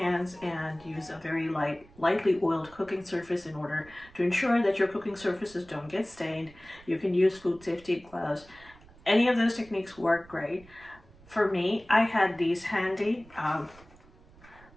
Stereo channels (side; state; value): right; noise; rumble, 24 dB below the sound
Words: and use a very lightly oiled cooking surface in order to ensure that your cooking surfaces don't get stained. You can use food safety gloves. Any of those techniques work great. For me, I had these handy.